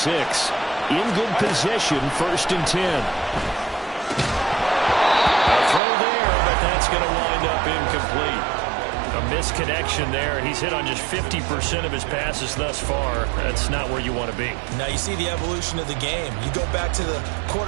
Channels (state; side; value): drops out; left; at 5.8 s